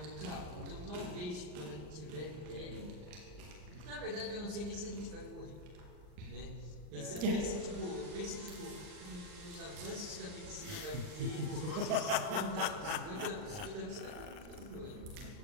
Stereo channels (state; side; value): late; left; 39 ms